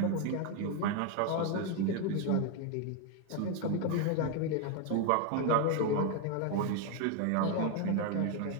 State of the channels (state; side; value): different; both; correlation 0.01